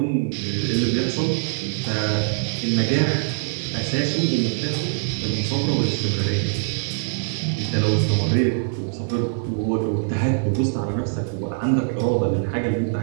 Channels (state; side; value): silent; left; digital silence